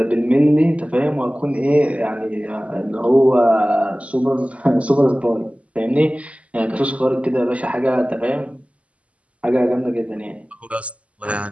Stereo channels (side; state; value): left; late; 0.065 ms